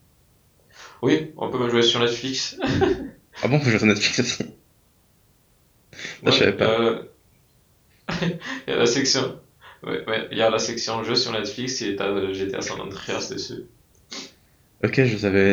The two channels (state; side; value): identical; both; correlation 1.00